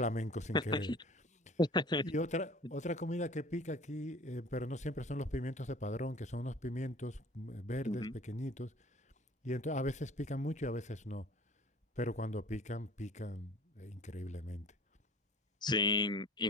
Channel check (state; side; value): normal; both; correlation 0.47